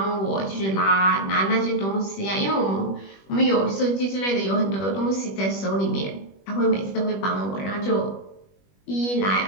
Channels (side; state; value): right; late; 21 ms